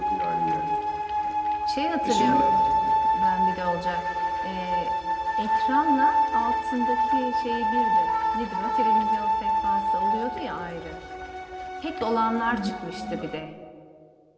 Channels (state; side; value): identical; both; correlation 1.00